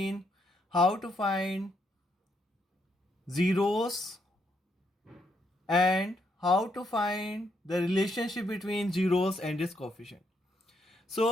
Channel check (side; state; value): both; normal; correlation 0.76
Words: how to find zeros and how to find the relationship between zeros and its coefficient.